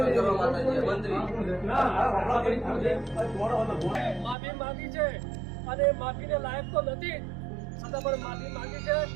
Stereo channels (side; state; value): left; drops out; at 4.4 s